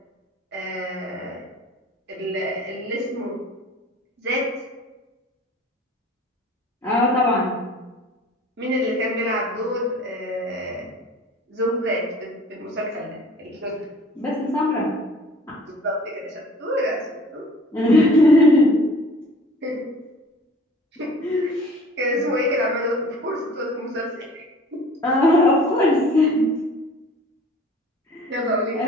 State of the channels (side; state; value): both; normal; correlation 0.47